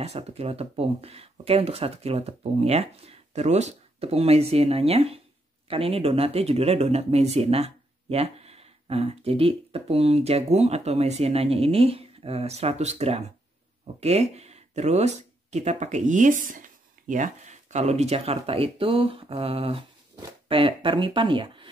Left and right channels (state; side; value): normal; both; correlation 0.77